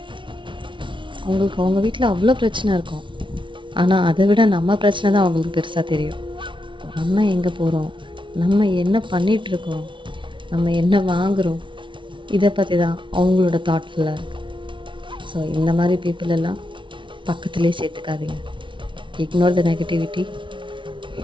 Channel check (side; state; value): left; late; 0.24 ms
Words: அவங்களுக்கு அவங்க வீட்டில் அவ்வளோ பிரச்சனை இருக்கும், ஆனால் அதை விட நம்ம பிரச்சனை தான் அவங்களுக்கு பெருசாக தெரியும். நம்ம எங்கே போகிறோம், நம்ம என்ன பண்ணிகிட்ருக்கோம், நம்ம என்ன வாங்குகிறோம், இதை பற்றி தான் அவங்களோட தாட்ஃபுல்லாக இருக்குது. ஸோ இந்த மாதிரி பீப்புள் எல்லாம் பக்கத்துலேயே சேர்த்துக்காதீங்க. Ignore the negativity,